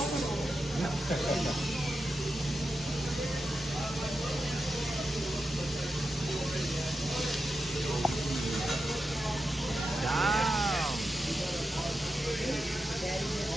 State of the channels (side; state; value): both; normal; correlation 0.88